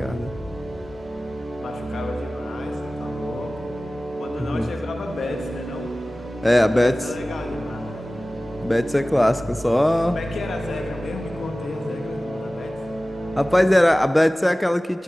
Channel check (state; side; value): normal; both; correlation 0.97